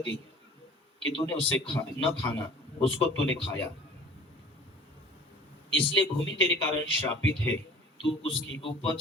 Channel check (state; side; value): normal; both; correlation 0.46